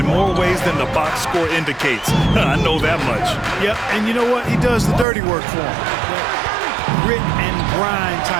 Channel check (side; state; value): left; drops out; at 5.1 s